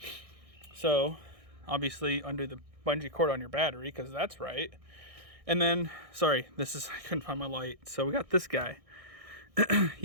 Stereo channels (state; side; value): late; left; 1.6 ms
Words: So obviously undo the bungee cord on your battery, because that's right. And then, sorry, I couldn't find my light. So we got this guy.